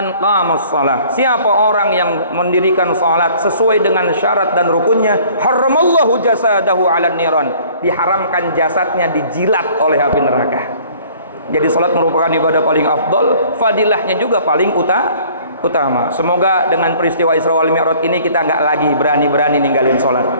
qamas shalah, siapa orang yang mendirikan salat sesuai dengan syarat dan rukunnya, haramallahu jasadahu 'alan niran, diharamkan jasadnya dijilat oleh api neraka. Jadi salat merupakan ibadah paling afdol, fadilahnya juga paling utama. Semoga dengan peristiwa Isra wal Mi'raj ini kita nggak lagi berani-berani ninggalin salat.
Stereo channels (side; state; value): both; inverted; correlation -0.54